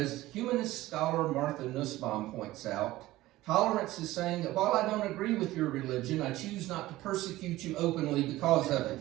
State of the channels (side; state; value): left; quieter; 16.9 dB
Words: humanist scholar Martha Nussbaum points out, tolerance is saying that while I don't agree with your religion, I choose not to persecute you openly because of